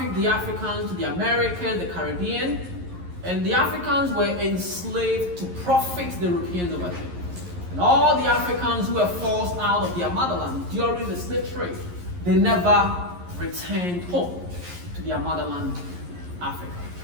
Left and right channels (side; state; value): left; late; 11 ms